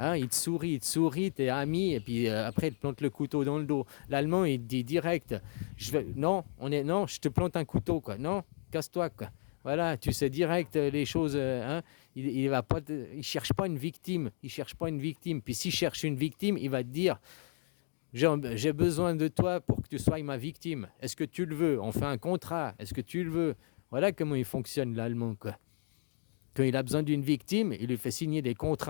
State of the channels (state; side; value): silent; right; digital silence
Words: il te sourit, t'es ami, et puis après, il te plante le couteau dans le dos. L'allemand, il te dit direct, non, je te plante un couteau, quoi. Non, casse-toi, quoi. Voilà, tu sais direct les choses, hein. Il cherche pas une victime, Puis s'il cherche une victime, il va te dire, j'ai besoin de toi pour que tu sois ma victime. Est-ce que tu le veux? On fait un contrat. Est-ce que tu le veux? Voilà comment il fonctionne, l'allemand, quoi. Quand il a besoin d'une victime, il lui fait signer des